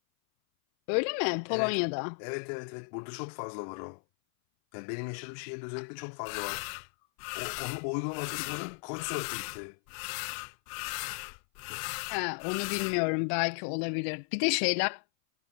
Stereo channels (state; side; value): silent; right; 55 dB below the other